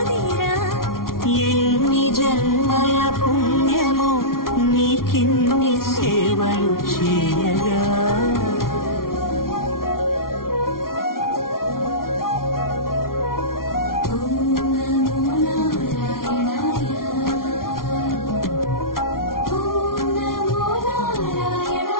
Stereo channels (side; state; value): right; late; 0.92 ms